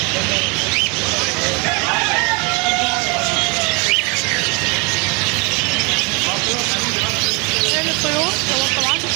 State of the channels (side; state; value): left; quieter; 30.7 dB